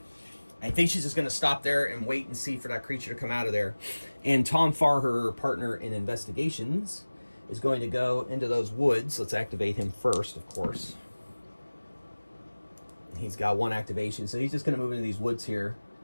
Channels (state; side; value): inverted; both; correlation -1.00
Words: I think she's just going to stop there and wait and see for that creature to come out of there. And Tom Farr, her partner in investigations, is going to go into those woods. Let's activate him first, of course. He's got 1 activation, so he's just going to move into these woods here